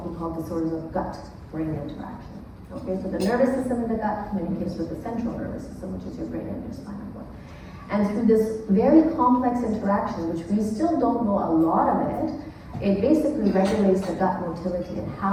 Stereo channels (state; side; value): identical; both; correlation 1.00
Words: we call disorders of gut-brain interaction. Okay, so the nervous system in the gut communicates with the central nervous system, which is your brain and your spinal cord. And through this very complex interaction, which we still don't know a lot of it, it basically regulates the gut motility and